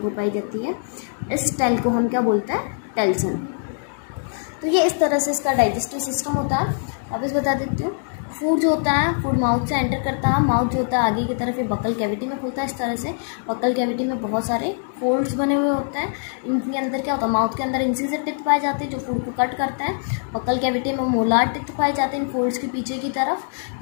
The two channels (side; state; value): right; silent; digital silence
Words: पाई जाती है। इस टेल को हम क्या बोलते हैं, टेल्सन। तो ये इस तरह से इसका डाइजेस्टिव सिस्टम होता है। वापस बता देती हूँ, फूड जो होता है फूड माउथ से एंटर करता है। माउथ जो होता है आगे की तरफ ये बकल कैविटी में खुलता है। इस तरह से बकल कैविटी में बहुत सारे फोल्ड्स बने हुए होते हैं। इनके अंदर क्या होता है, माउथ के अंदर इंसिजर टिथ पाए जाते हैं जो फूड को कट करते हैं। बकल कैविटी में मोलार टिथ पाए जाते हैं इन फोल्ड्स के पीछे की तरफ।